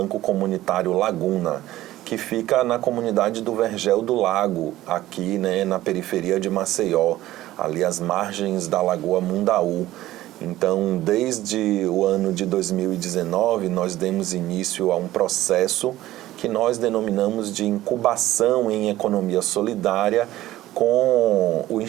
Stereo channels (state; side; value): quieter; left; 15.3 dB